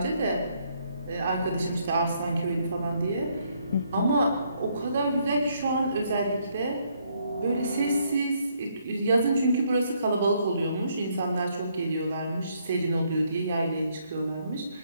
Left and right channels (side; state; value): both; inverted; correlation -0.71